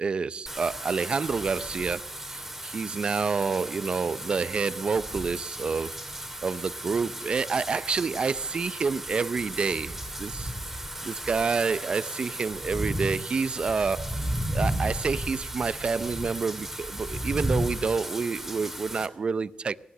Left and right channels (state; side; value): quieter; left; 3.7 dB